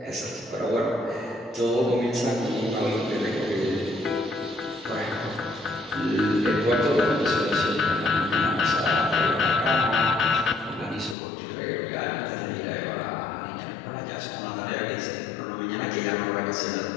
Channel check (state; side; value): drops out; right; at 11.2 s